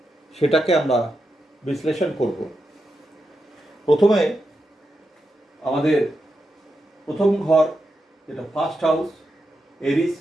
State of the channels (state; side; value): normal; both; correlation 0.87